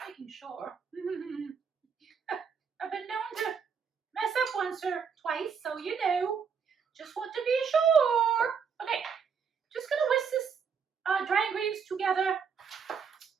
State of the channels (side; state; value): left; quieter; 6.4 dB